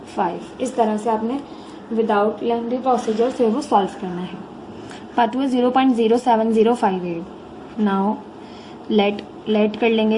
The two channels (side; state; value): both; identical; correlation 1.00